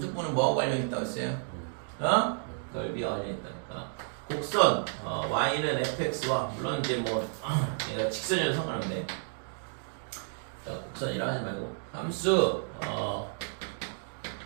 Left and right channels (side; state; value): left; silent; 57 dB below the other